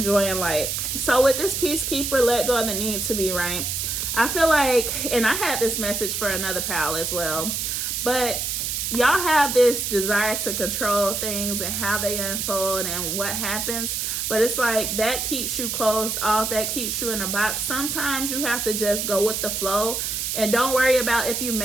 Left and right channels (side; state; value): right; noise; hiss, 2 dB below the sound